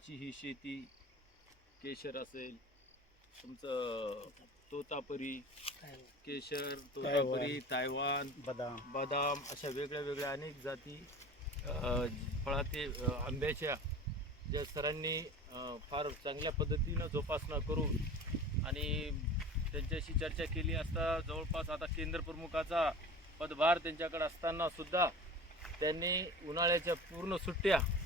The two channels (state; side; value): normal; both; correlation 0.37